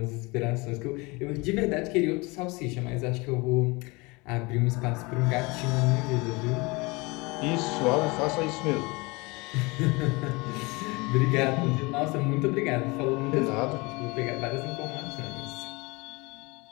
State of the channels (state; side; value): quieter; right; 25.5 dB